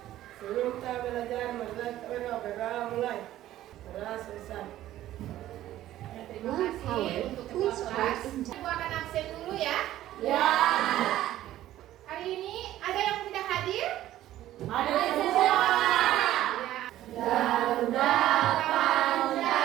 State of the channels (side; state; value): left; quieter; 13.7 dB